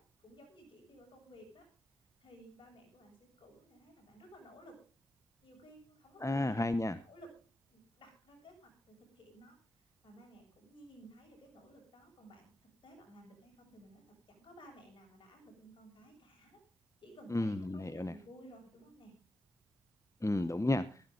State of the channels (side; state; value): both; normal; correlation 0.90